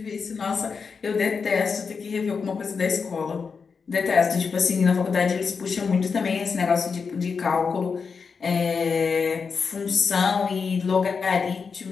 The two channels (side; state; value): right; quieter; 5.4 dB